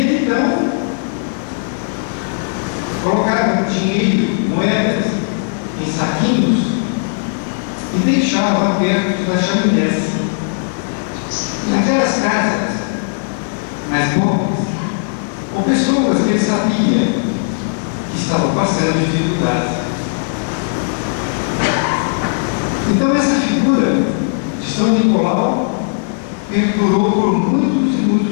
então colocava dinheiro, moedas, em saquinhos e deixava perto das chaminés. Naquelas casas mais pobres, ou pessoas que ele sabia que estavam passando dificuldades. Então essa figura de São Nicolau perdurou por muitos e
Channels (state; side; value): silent; right; digital silence